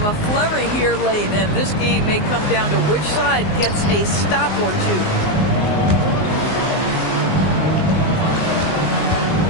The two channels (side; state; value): right; late; 19 ms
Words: a flurry here late, and this game may come down to which side gets a stop or two.